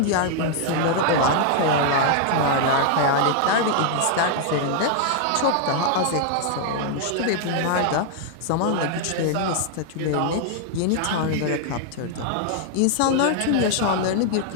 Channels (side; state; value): both; different; correlation 0.00